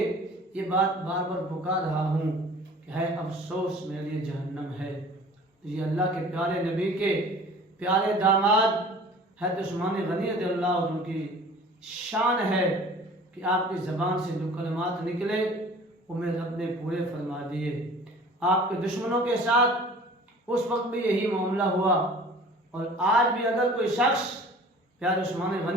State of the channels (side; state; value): both; normal; correlation 0.46